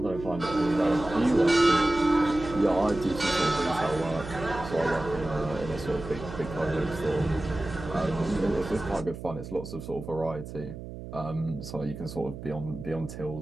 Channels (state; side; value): noise; right; hum, 11 dB below the sound